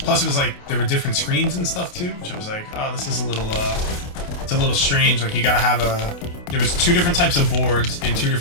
Plus, it was like there were different screens and stuff too, which I was like, oh, this is a little, it's a little strange. Like you gotta have there was 2 different types of boards and 2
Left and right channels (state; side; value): late; right; 28 ms